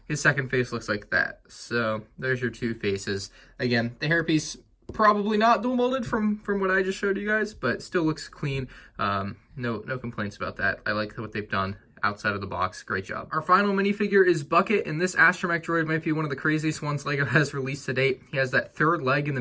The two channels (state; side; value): identical; both; correlation 1.00